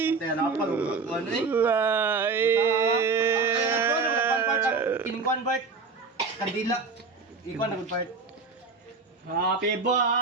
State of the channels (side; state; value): left; quieter; 4.4 dB